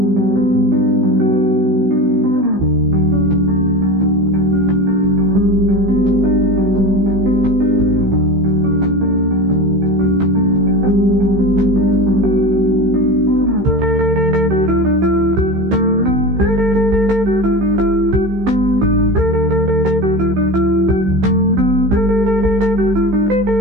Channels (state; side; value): late; left; 15 ms